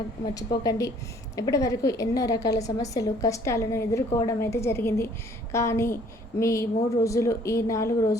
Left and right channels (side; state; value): both; normal; correlation 0.58